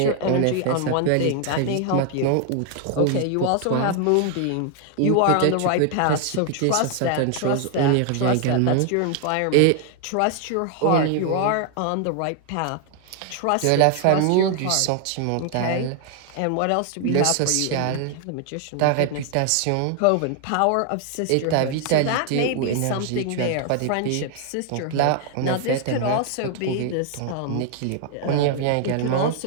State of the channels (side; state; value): both; different; correlation 0.00